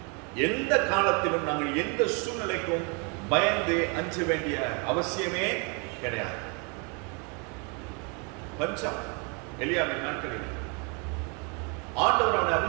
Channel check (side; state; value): left; quieter; 34.0 dB